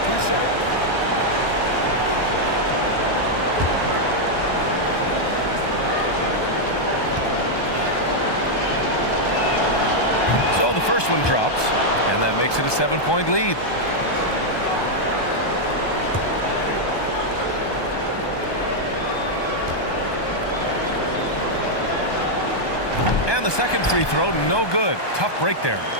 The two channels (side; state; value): right; late; 1.2 ms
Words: 2 shots. So the first one drops, and that makes it a 7-point lead. And the second free throw, no good. Tough break there.